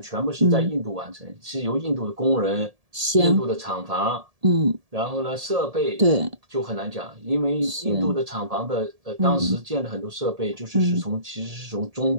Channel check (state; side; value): late; left; 1.7 ms